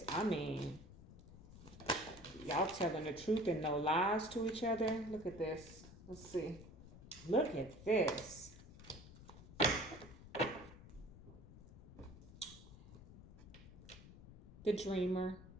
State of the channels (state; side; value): noise; left; rumble, 17 dB below the sound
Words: mean, y'all telling the truth and no lies to each other. Look at this. Let's see. Look at this. The dreamer.